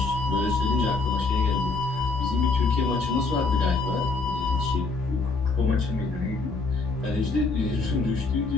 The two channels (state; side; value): quieter; right; 3.8 dB